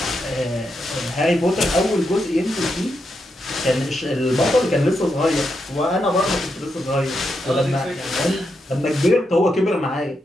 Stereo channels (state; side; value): normal; both; correlation 0.83